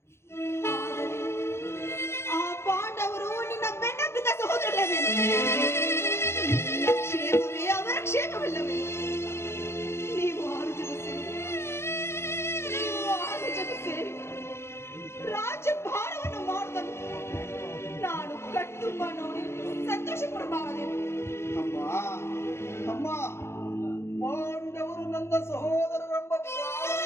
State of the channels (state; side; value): late; right; 0.12 ms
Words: ಆ ಪಾಂಡವರು ನಿನ್ನ ಬೆನ್ನಬ್ಬಿದ ಸಹೋದರಲ್ಲವೇನು? ನಿನ್ನ ಕ್ಷೇಮವೇ ಅವರ ಕ್ಷೇಮವಿಲ್ಲವೇ? ನೀವು ಆರು ಜನ ಸೇರಿ ರಾಜ್ಯಭಾರವನ್ನು ಮಾಡುವುದನ್ನು ನಾನು ಕಟ್ಟುಂಬ ನೋಡಿ ಸಂತೋಷ ಪಡಬಾರದೇನು? ಅಮ್ಮ ಅಮ್ಮ, ಪಾಂಡವರು ನನ್ನ ಸಹೋದರರೆಂಬ